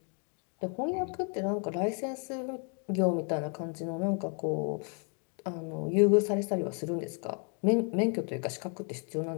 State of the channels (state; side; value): quieter; right; 39.7 dB